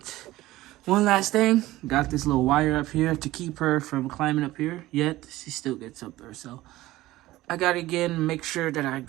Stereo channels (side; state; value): left; quieter; 17.0 dB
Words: One last thing. Got this little wire up here to keep her from climbing up here. Yet, she still gets up there, so I gotta again make sure that I